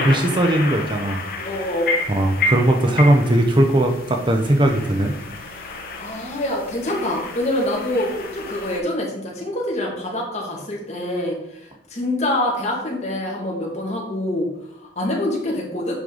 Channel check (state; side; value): normal; both; correlation 0.63